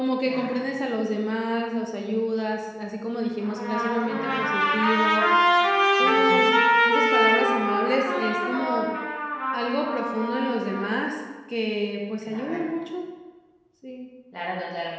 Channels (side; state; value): both; identical; correlation 1.00